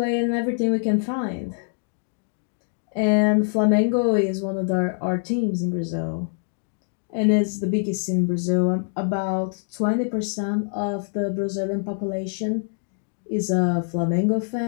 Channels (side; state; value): right; silent; 62 dB below the other